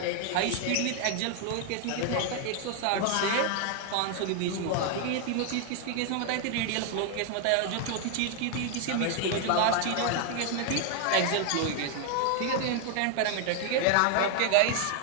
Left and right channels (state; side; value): different; both; correlation 0.00